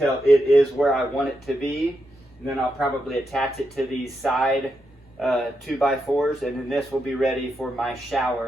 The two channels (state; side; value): normal; both; correlation 0.84